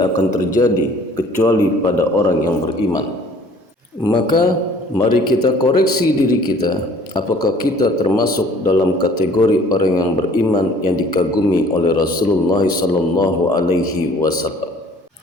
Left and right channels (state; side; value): normal; both; correlation 0.54